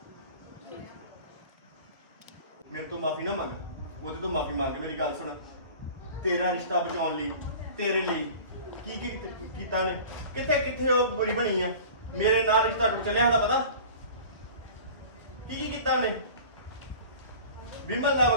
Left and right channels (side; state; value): both; inverted; correlation -0.41